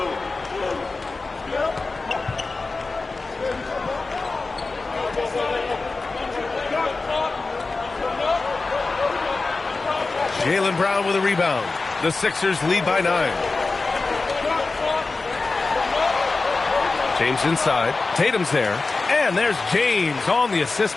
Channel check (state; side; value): quieter; right; 3.7 dB